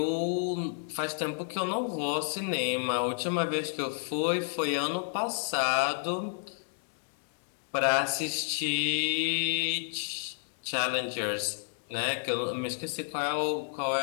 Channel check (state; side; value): silent; right; digital silence